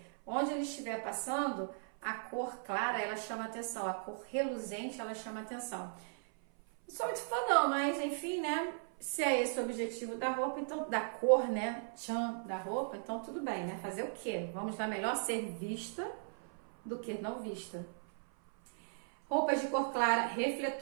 onde ele estiver passando, a cor clara ela chama atenção, a cor reluzente ela chama atenção. Não sou muito fã não, mas enfim, né? Se é esse o objetivo da roupa, então da cor, né? Tchan, da roupa, então tudo bem, né? Fazer o quê? Vamos lá, melhor ser vista do que não vista. Roupas de cor clara,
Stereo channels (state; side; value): silent; left; 53 dB below the other